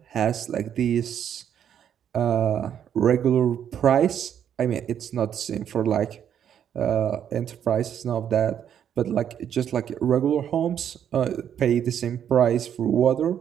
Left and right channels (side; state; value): left; quieter; 9.2 dB